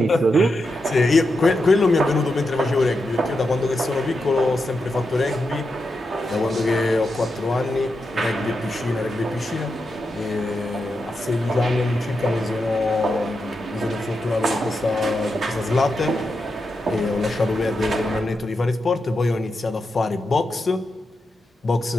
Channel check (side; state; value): both; normal; correlation 0.87